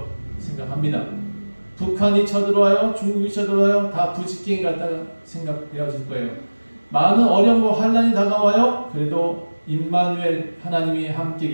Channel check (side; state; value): both; inverted; correlation -1.00